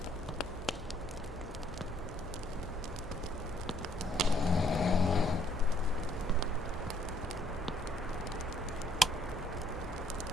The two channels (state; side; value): normal; both; correlation 0.66